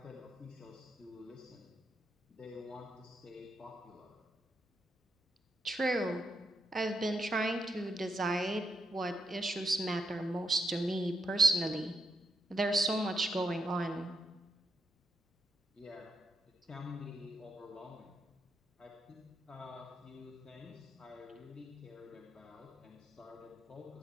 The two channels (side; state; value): both; normal; correlation 0.81